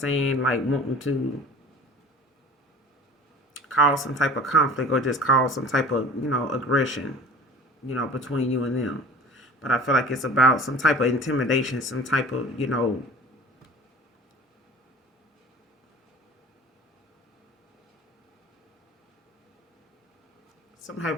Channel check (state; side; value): normal; both; correlation 0.42